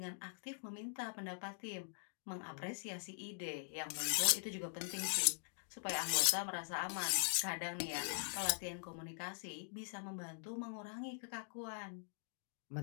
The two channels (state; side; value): silent; right; digital silence